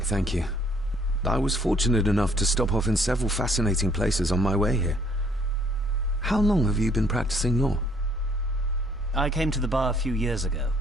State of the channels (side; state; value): both; normal; correlation 0.63